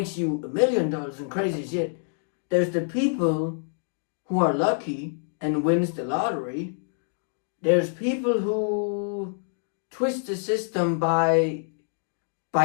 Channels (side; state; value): right; silent; digital silence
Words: you $1 million and crazy shit. There's the people who are lucky and wins the lottery, There's people who twist the system by